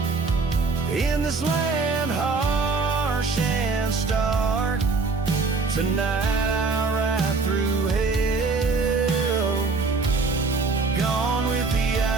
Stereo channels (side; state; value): left; quieter; 4.1 dB